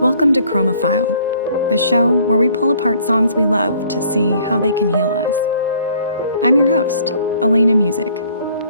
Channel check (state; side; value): inverted; both; correlation -0.59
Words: to Chromaphile, the show where we pull apart songs we love to see how they can heal us. I'm your host, Alaina Musich.